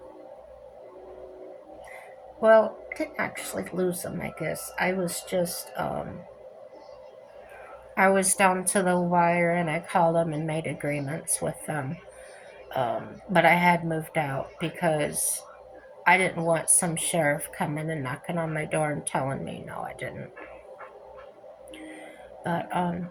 well, I didn't actually lose them, I guess. I was down to the wire, and I called them and made agreements with them. But I had moved out because I didn't want some sheriff coming and knocking on my door and telling me no, I didn't. But,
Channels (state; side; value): identical; both; correlation 1.00